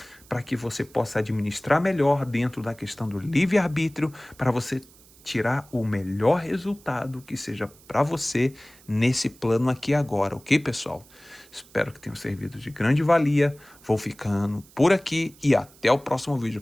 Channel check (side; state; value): right; noise; hiss, 25 dB below the sound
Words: para que você possa administrar melhor dentro da questão do livre-arbítrio, para você tirar o melhor resultado que seja para você nesse plano aqui agora, ok, pessoal? Espero que tenham servido de grande valia. Vou ficando por aqui e até o próximo vídeo,